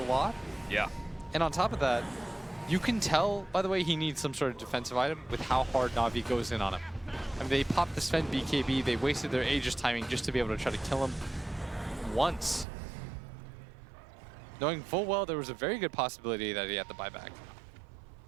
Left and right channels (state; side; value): drops out; left; at 12.7 s